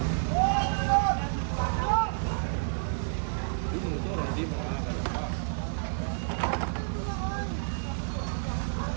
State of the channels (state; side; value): silent; left; 58 dB below the other